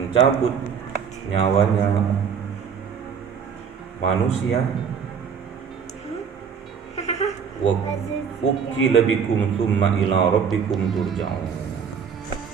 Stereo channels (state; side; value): quieter; left; 6.8 dB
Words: nyawanya manusia. Wa ukila bikum tsumma ila rabbikum turja'un.